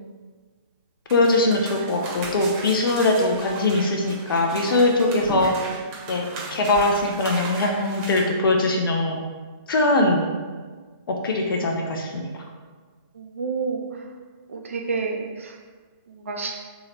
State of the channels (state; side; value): inverted; both; correlation -0.43